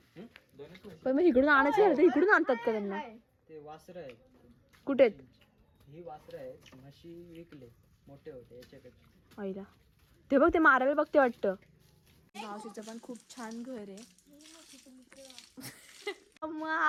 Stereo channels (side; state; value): both; identical; correlation 1.00